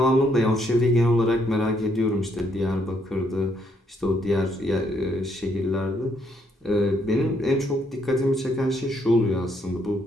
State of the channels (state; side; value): normal; both; correlation 0.72